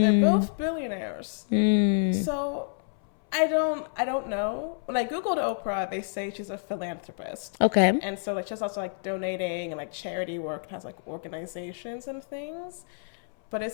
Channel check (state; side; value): silent; right; 59 dB below the other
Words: both billionaires. So I don't know. When I Googled Oprah, they say she's a philanthropist. Okay. And so, like, she's also, like, donating and, like, charity work, has, like, organizations and things. But